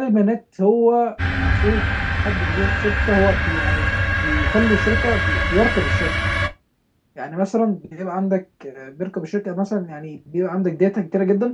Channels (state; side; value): identical; both; correlation 1.00